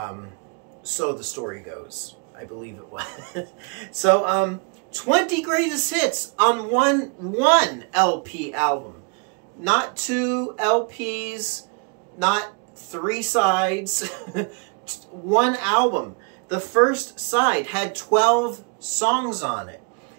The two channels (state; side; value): quieter; left; 34.0 dB